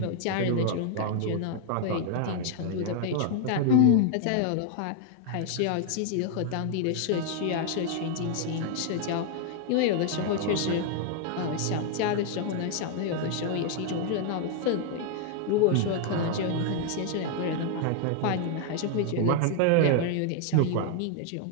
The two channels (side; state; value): both; different; correlation 0.00